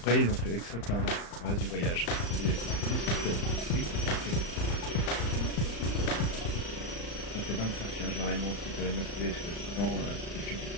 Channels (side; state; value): right; late; 35 ms